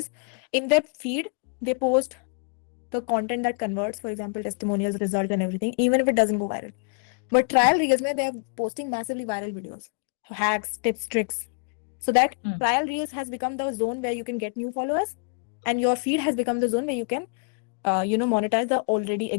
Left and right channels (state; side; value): quieter; right; 38.1 dB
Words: in their feed, they post the content that converts, for example, testimonials, results and everything, even if it doesn't go viral. But trial reels, they are posting massively viral videos, hacks, tips, tricks. So that trial reels has become the zone where you can get new followers, and your feed has become the zone where you can, monetize the already